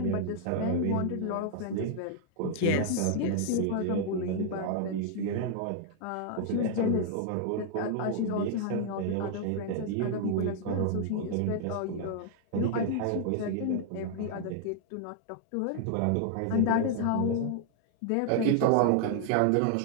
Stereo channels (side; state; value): both; different; correlation -0.01